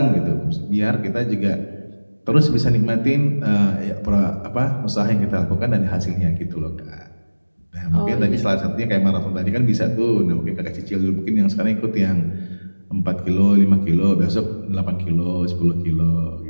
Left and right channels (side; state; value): both; inverted; correlation -1.00